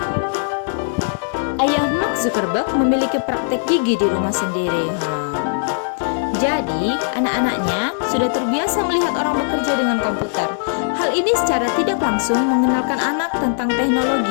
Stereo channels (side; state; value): right; silent; digital silence